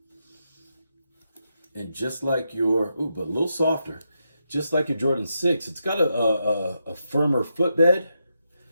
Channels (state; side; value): inverted; both; correlation -0.84